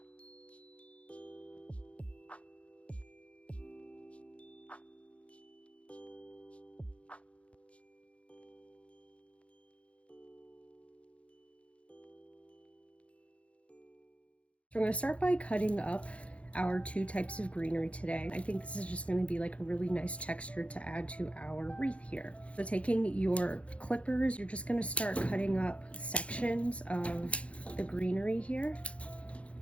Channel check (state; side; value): late; right; 0.062 ms